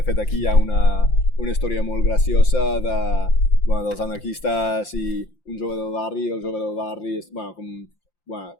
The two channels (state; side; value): late; right; 5.8 ms